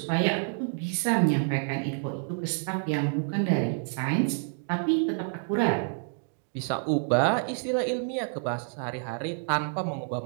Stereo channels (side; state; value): left; silent; 59 dB below the other